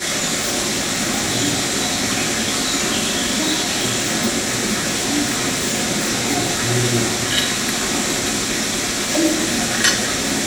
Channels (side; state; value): both; identical; correlation 1.00